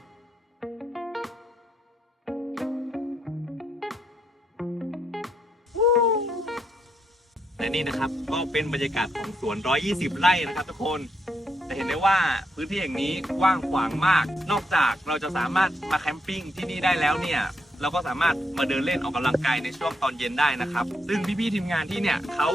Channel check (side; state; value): both; normal; correlation 0.78